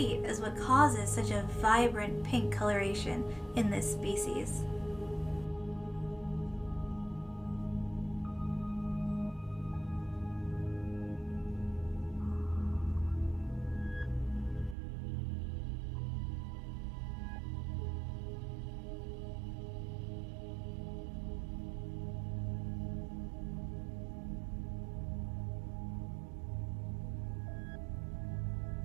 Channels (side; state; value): left; drops out; at 14.8 s